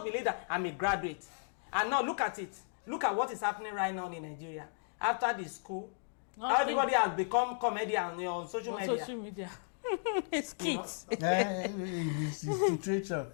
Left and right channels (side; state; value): right; silent; digital silence